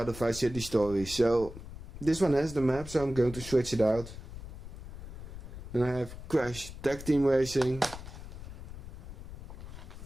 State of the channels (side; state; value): left; noise; rumble, 12 dB below the sound